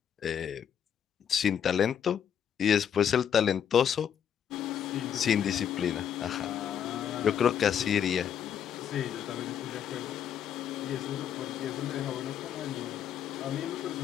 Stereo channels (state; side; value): quieter; right; 8.8 dB